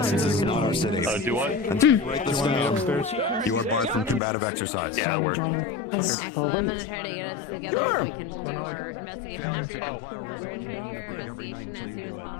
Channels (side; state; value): right; drops out; at 4.2 s